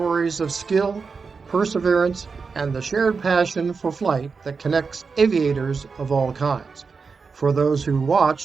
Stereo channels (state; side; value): quieter; left; 5.0 dB